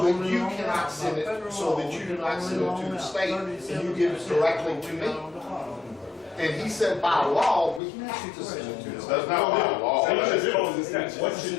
you cannot send it, so that you do not send it to the state and you give it directly to me. And he said, by law, we have to send it to the state. That's not by law. What you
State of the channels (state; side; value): drops out; right; at 7.8 s